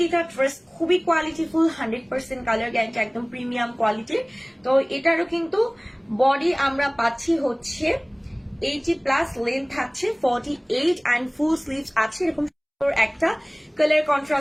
ড্রেস খুবই কোয়ালিটিফুল, 100% কালার গ্যারান্টি, একদম প্রিমিয়াম কোয়ালিটির। তো এটারও কিন্তু বডি আমরা পাচ্ছি হচ্ছে 80+, লেন্থ থাকছে 48 এন্ড ফুল স্লিভস আছে। এরকম একটা কালার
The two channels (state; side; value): identical; both; correlation 1.00